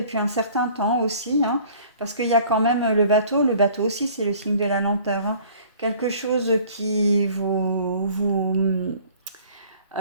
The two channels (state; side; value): inverted; both; correlation -0.52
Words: un certain temps aussi, hein, parce qu'il y a quand même le bateau aussi c'est le signe de la lenteur, hein, quelque chose qui vous